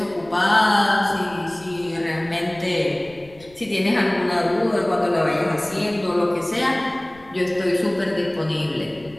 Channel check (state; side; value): noise; left; rumble, 25 dB below the sound